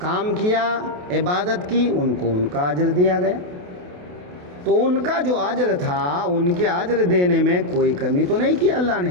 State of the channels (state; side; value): late; left; 28 ms